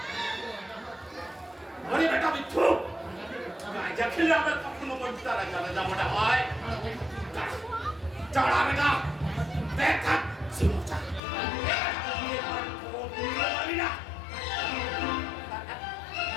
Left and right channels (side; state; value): right; drops out; at 11.2 s